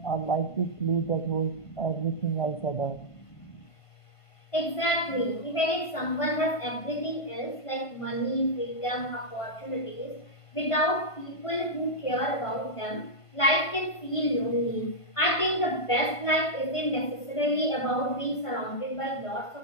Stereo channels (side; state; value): right; late; 1.5 ms